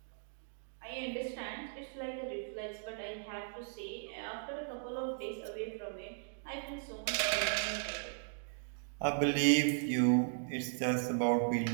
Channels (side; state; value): left; silent; digital silence